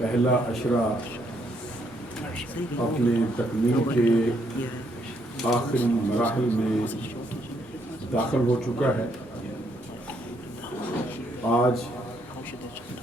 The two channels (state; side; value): normal; both; correlation 0.72